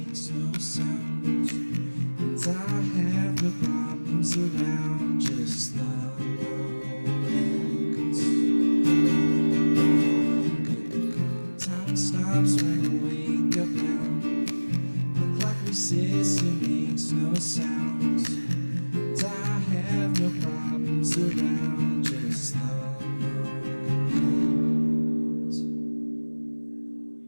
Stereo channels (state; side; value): inverted; both; correlation -1.00